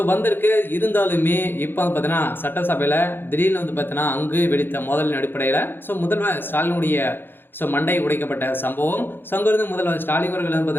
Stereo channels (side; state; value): right; late; 0.10 ms